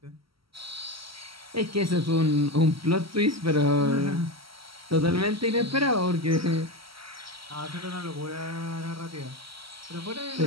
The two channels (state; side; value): late; left; 0.75 ms